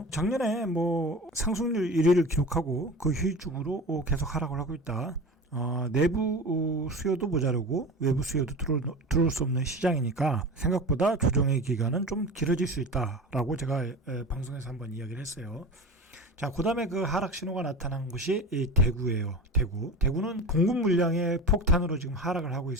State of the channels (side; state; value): both; normal; correlation 0.32